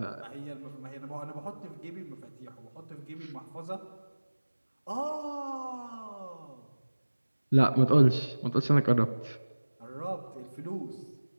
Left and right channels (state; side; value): inverted; both; correlation -1.00